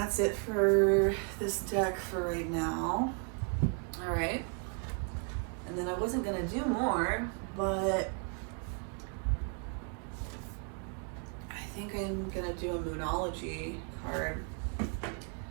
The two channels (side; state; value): left; quieter; 38.7 dB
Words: it for this deck for right now. All right. And then I wasn't gonna do more, but I think I'm gonna do a Moonology card.